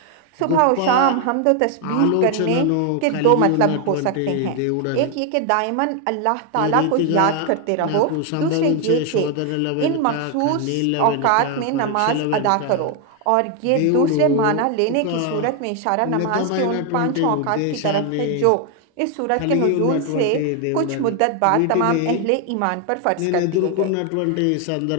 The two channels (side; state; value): both; different; correlation 0.01